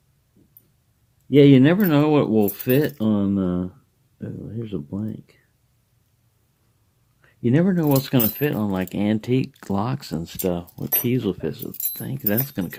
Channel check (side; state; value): both; identical; correlation 1.00